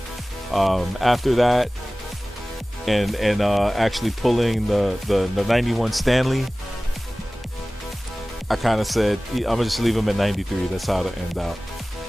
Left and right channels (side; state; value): both; normal; correlation 0.98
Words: after that, and actually pulling the 91 Stanley, I kind of said I'm gonna just leave him at 93. That's how to end out.